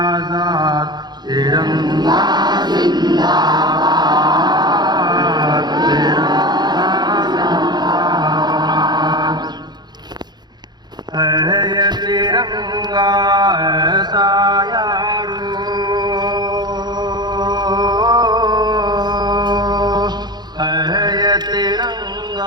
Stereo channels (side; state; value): left; late; 0.20 ms